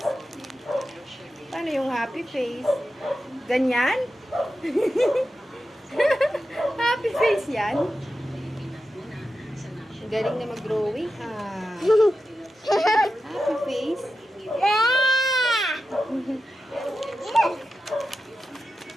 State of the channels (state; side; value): normal; both; correlation 0.91